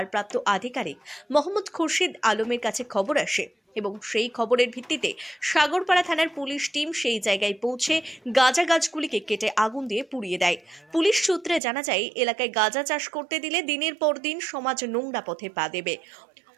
আধিকারিক মোহাম্মদ খুরশিদ আলমের কাছে খবর আসে এবং সেই খবরের ভিত্তিতে সাগরপাড়া থানার পুলিশ টিম সেই জায়গায় পৌঁছে গাঁজা গাছগুলিকে কেটে আগুন দিয়ে পুড়িয়ে দেয়। পুলিশ সূত্রে জানা যায়, এলাকায় গাঁজা চাষ করতে দিলে দিনের পর দিন সমাজ নোংরা পথে পা দেবে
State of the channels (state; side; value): drops out; left; at 11.6 s